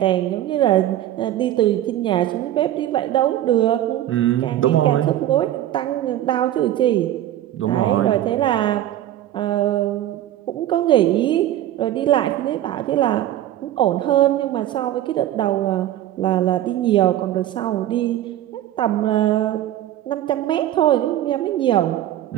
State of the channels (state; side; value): quieter; left; 12.9 dB